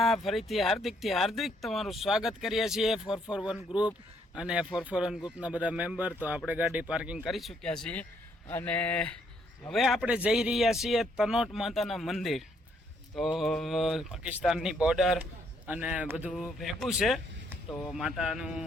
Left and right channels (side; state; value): both; normal; correlation 0.70